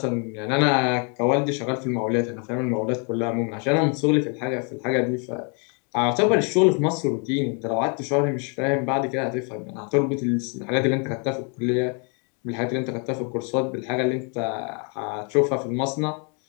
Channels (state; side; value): quieter; right; 37.2 dB